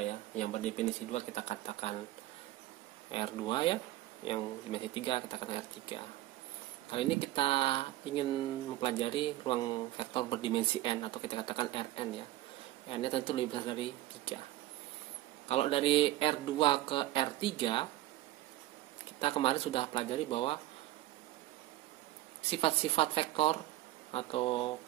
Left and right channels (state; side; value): quieter; left; 15.8 dB